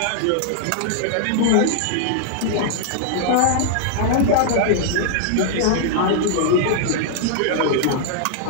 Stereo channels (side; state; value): both; different; correlation -0.01